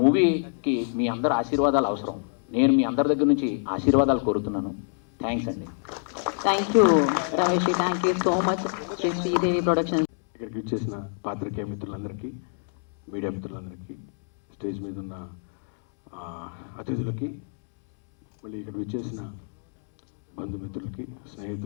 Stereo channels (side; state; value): right; silent; digital silence